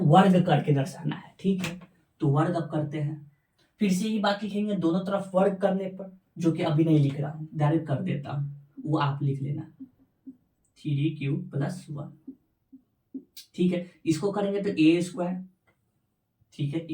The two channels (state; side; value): identical; both; correlation 1.00